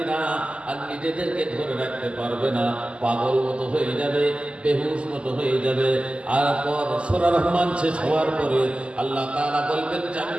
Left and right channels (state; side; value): late; left; 0.053 ms